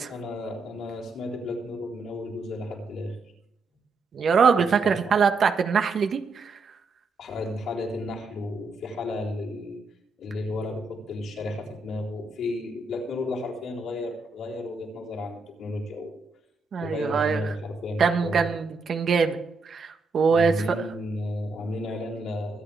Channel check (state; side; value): quieter; left; 3.7 dB